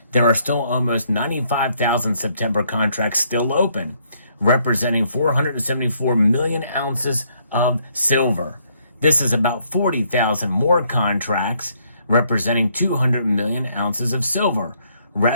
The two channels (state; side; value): inverted; both; correlation -0.70